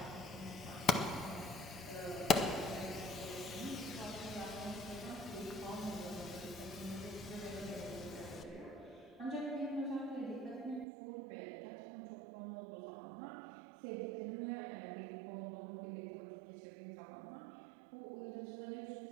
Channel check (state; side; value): drops out; left; at 10.9 s